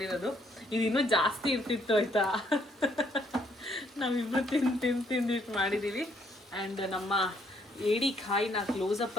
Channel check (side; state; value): both; normal; correlation 0.68